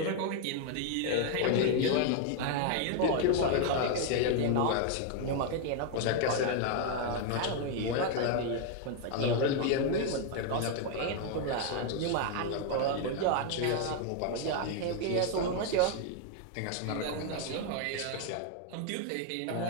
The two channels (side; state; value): both; different; correlation 0.00